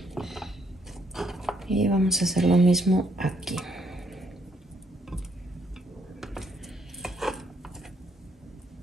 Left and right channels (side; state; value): both; normal; correlation 0.71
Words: Y vamos a hacer lo mismo aquí.